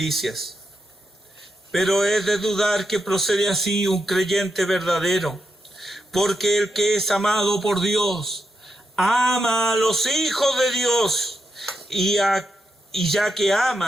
Pero es de dudar que procede así un creyente verdadero, porque el que es amado por Dios, ama a los hijos de Dios, y ya que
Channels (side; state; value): both; normal; correlation 0.84